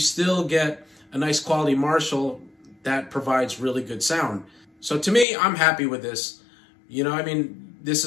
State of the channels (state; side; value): drops out; right; at 5.2 s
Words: get a nice quality Marshall that provides really good sound. So to me, I'm happy with this. You know, I mean, this